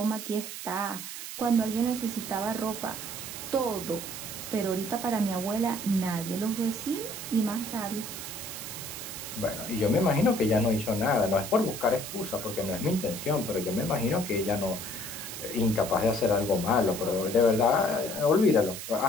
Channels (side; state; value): right; noise; hiss, 8 dB below the sound